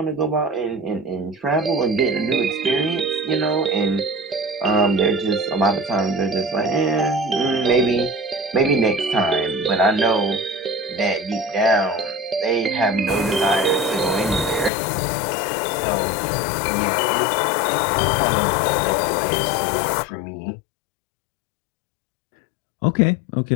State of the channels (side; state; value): right; drops out; at 14.7 s